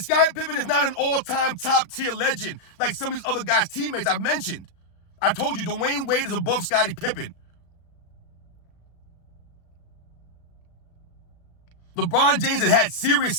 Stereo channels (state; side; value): late; right; 36 ms